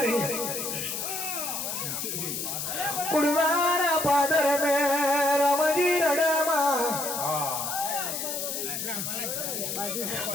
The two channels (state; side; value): noise; left; hiss, 3 dB below the sound